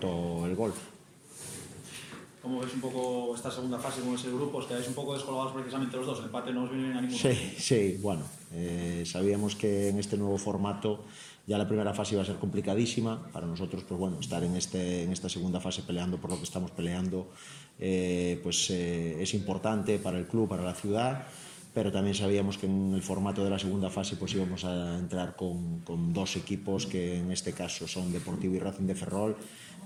el gol. ¿Cómo ves un poco esta segunda fase con ese grupo? Os quedáis un poco descolgados precisamente los dos, el empate no os viene bien a ninguno. Sí, bueno, sabíamos que en este nuevo formato ya la primera fase iba a ser complicadísima para nosotros, pues bueno, estar en esta segunda fase peleando por lo que estamos peleando es importante para el club, para la ciudad, pero también sabíamos que en el formato de la segunda fase pues íbamos a entrar con dos equipos que en este caso son Deportivo y Racing de Ferrol,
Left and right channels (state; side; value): identical; both; correlation 1.00